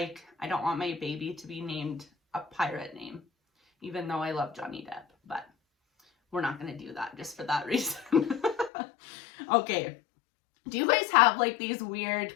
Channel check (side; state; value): right; drops out; at 8.7 s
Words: I don't want my baby to be named a pirate name. Even though I love Johnny Depp, but we're not going to do that just for that reason. Okay. Do you guys have like these weird